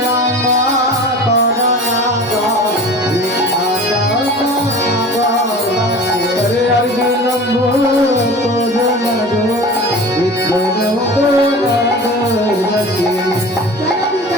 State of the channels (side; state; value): both; normal; correlation 0.38